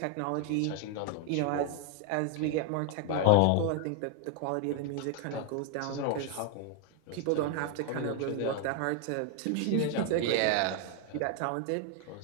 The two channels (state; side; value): different; both; correlation 0.00